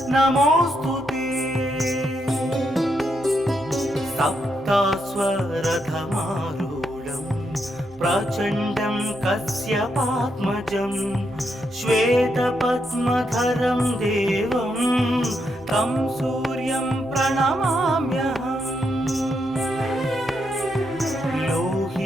नमोस्तुते सप्तास्वरथमारूढं प्रचण्डं कश्यपात्मजं श्वेतपद्मधरं देवं तं सूर्यं प्रणमाम्यहम्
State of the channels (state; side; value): normal; both; correlation 0.80